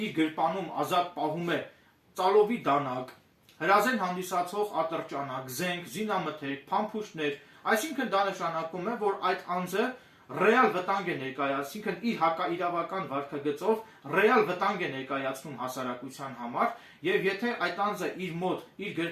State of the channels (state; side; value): identical; both; correlation 1.00